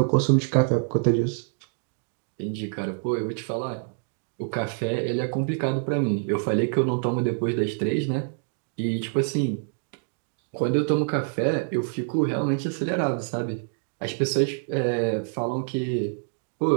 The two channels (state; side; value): silent; left; 60 dB below the other